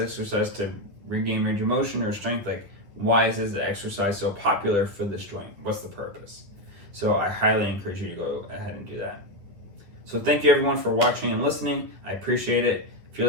to regain range of motion or strength? Like, why is this exercise so popular for this joint? What's the purpose? So I highly encourage you to go ahead and do that. So thank you everyone for watching and listening. I appreciate it. If you're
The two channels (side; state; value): left; late; 10 ms